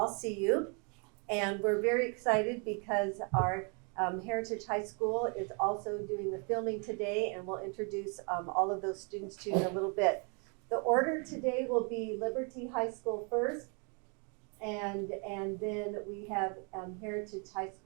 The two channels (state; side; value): quieter; left; 36.1 dB